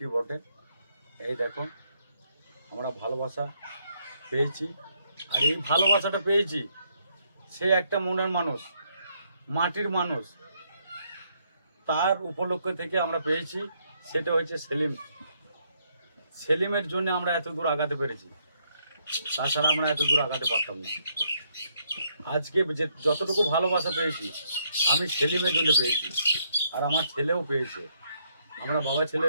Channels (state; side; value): inverted; both; correlation -0.73